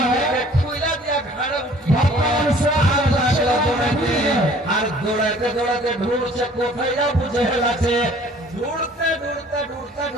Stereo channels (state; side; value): normal; both; correlation 0.53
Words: আর দৌড়াতে দৌড়াতে ঢুকছে, কোথায় আবু জেহেল আছে, ঢুড়তে ঢুড়তে ঢুড়তে